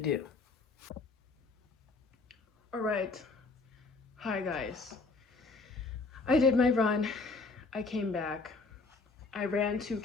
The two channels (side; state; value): right; quieter; 3.9 dB